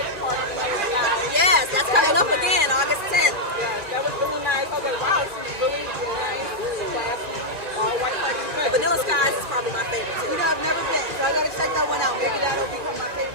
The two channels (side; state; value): left; late; 2.4 ms